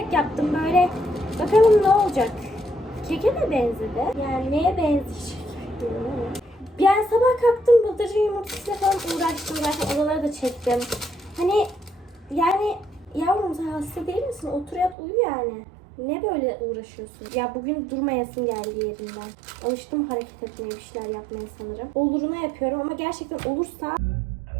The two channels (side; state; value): left; drops out; at 15.0 s